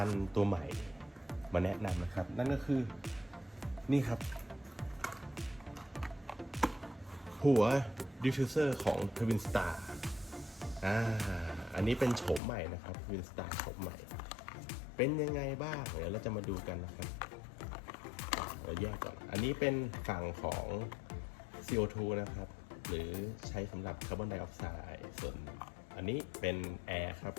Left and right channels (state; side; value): drops out; right; at 12.4 s